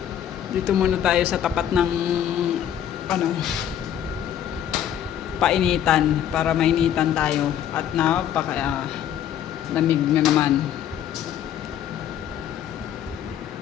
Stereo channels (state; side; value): quieter; right; 10.2 dB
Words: Dito muna tayo sa tapat ng painitan para mainitan tayo at napaka lamig na naman.